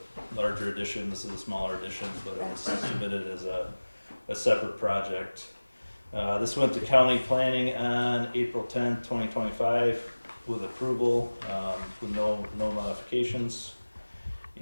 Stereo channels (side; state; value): both; inverted; correlation -1.00